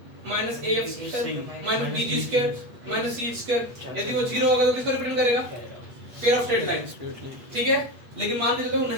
minus af square minus bg square minus c square। यदि वो 0 होगा तो किसको रिप्रेजेंट करेगा? Pair of straight line. ठीक है, लेकिन मान के चलो वो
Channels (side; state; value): left; late; 8.3 ms